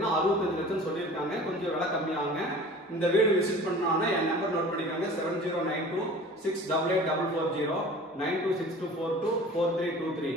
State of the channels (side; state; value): both; normal; correlation 0.42